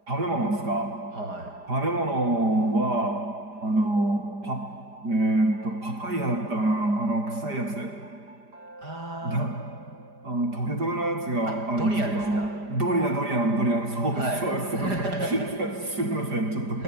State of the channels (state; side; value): late; left; 5.0 ms